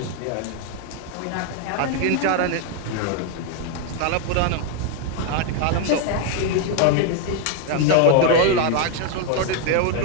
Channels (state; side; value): different; both; correlation 0.01